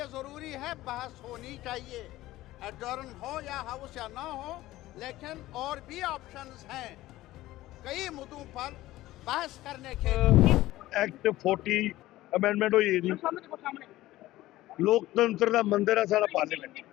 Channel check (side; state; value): right; quieter; 16.5 dB